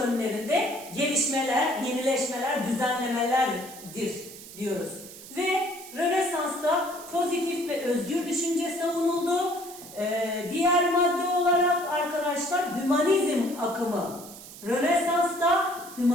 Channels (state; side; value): noise; right; hiss, 16 dB below the sound